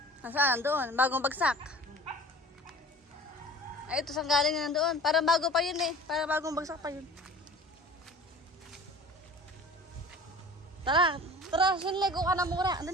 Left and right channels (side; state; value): both; normal; correlation 0.42